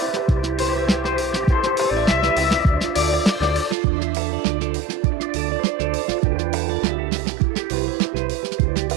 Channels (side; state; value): left; drops out; at 3.8 s